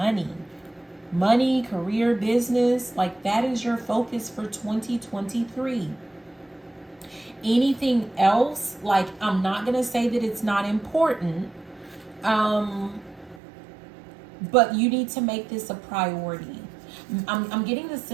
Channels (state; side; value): drops out; left; at 13.4 s